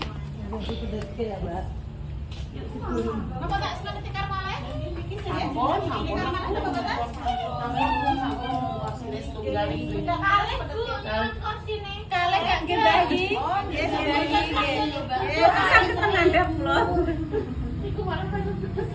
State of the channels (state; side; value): identical; both; correlation 1.00